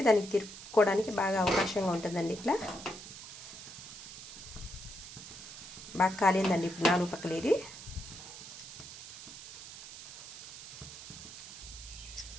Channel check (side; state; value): right; noise; hiss, 12 dB below the sound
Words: దానికి తిరుక్కోవడానికి బాగా అవకాశంగా ఉంటుందండి. ఇట్లా బాగా కాలిందండి. ఇప్పుడు 4 పక్కలు ఇది.